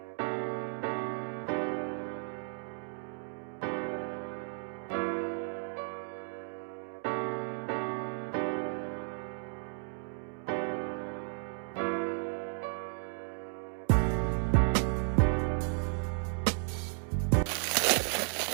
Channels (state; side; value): silent; left; 55 dB below the other